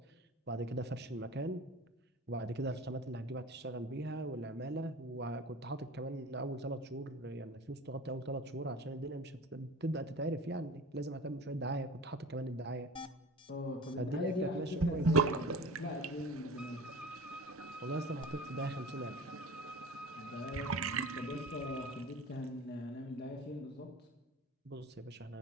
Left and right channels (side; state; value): both; normal; correlation 0.37